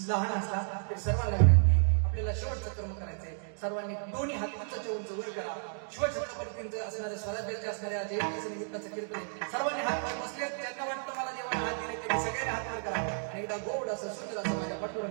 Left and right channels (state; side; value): silent; left; digital silence